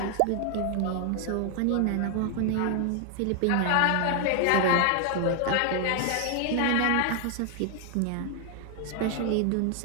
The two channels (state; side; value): different; both; correlation 0.00